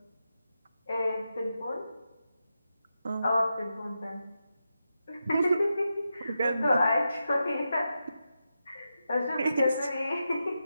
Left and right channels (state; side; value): inverted; both; correlation -0.88